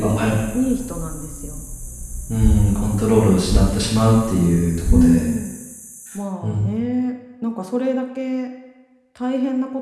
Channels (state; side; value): identical; both; correlation 1.00